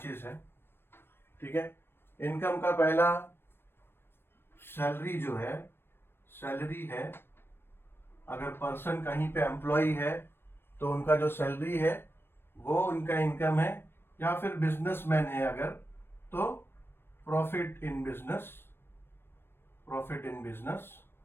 हैं। ठीक है, इनकम का पहला सैलरी जो है, सैलरी है। अगर पर्सन कहीं पे एम्प्लॉय है तो उनका जो सैलरी है वो उनका इनकम है, या फिर बिजनेसमैन है अगर तो प्रॉफिट इन बिजनेस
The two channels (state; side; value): late; right; 0.11 ms